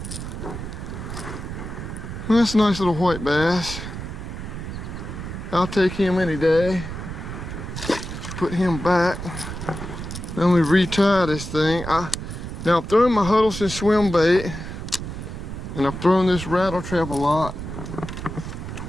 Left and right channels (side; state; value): right; noise; rumble, 8 dB below the sound